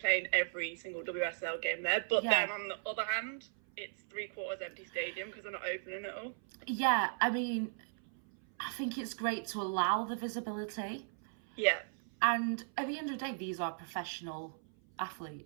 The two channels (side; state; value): left; silent; 53 dB below the other